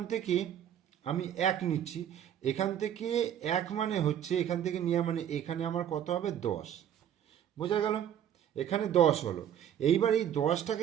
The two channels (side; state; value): left; quieter; 10.0 dB